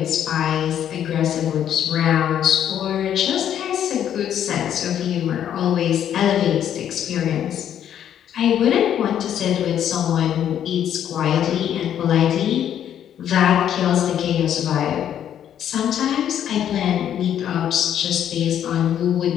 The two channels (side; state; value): right; quieter; 10.0 dB